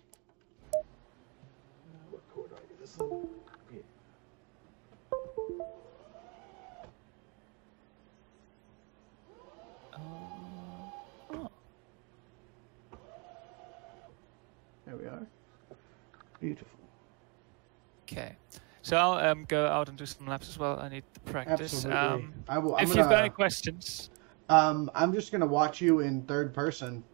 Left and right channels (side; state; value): left; quieter; 32.9 dB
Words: What chord do I do this one? Yeah. Oh. There we are. Beautiful. Okay, so I'll go out and do some laps as well. I need to practice. Absolutely. If you've got any questions, I'm just gonna watch you in third person